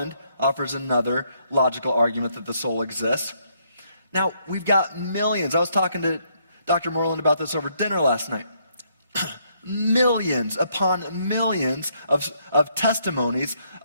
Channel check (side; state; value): both; inverted; correlation -0.72